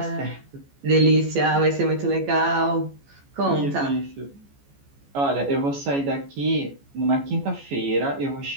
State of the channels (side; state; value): left; late; 14 ms